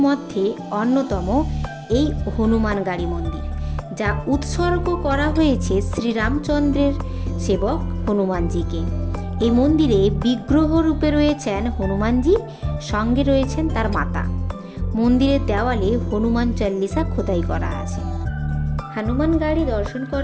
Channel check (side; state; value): both; identical; correlation 1.00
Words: মধ্যে অন্যতম এই হনুমানগাড়ি মন্দির, যা উৎসর্গ করা হয়েছে শ্রীরামচন্দ্রের সেবক হনুমানজিকে। এই মন্দিরে বিগ্রহ রূপে রয়েছেন হনুমানজি, সঙ্গে রয়েছেন তার মাতা। মন্দিরের দেওয়ালে হনুমান চল্লিশা খোদাই করা আছে। হনুমান গাড়ি দর্শন